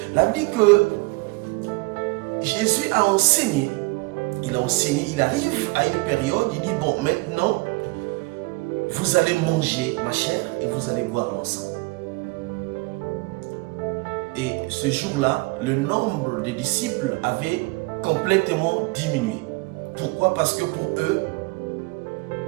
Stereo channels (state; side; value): quieter; left; 25.3 dB